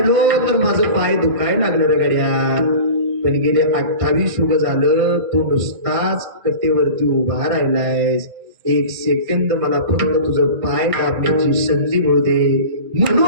तर माझं पाय दुखायला लागलं रे गड्या. पण गेले 28 युग झालं तू नुसताच कटेवरती उभा राहिलायस. 1 सेकंद मला फक्त तुझं पाय दाबण्याची संधी मिळू दे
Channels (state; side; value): late; left; 1.9 ms